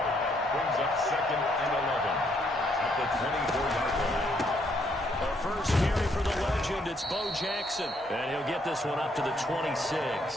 Brings up 2nd and 11 at the 24-yard line. A first carry for the legend. It's Bo Jackson. And he'll get this one up to the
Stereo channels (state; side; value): normal; both; correlation 0.71